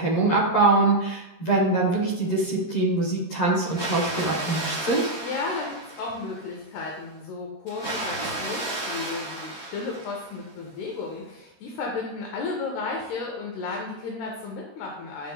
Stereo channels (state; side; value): late; right; 13 ms